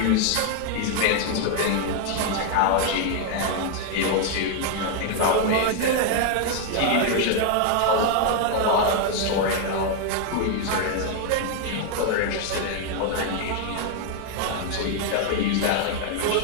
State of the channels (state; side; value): different; both; correlation 0.00